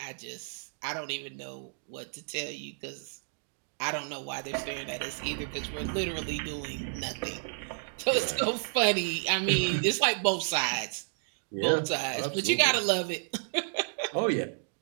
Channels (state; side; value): silent; left; digital silence